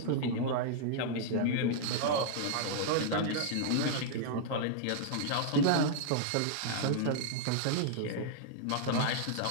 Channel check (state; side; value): different; both; correlation -0.01